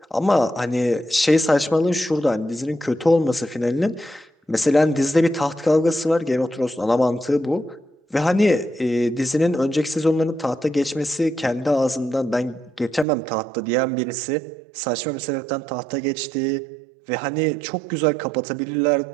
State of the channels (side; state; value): left; drops out; at 13.1 s